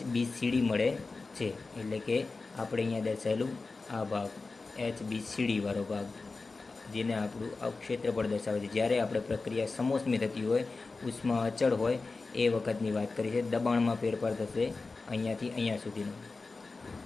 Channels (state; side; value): quieter; right; 3.8 dB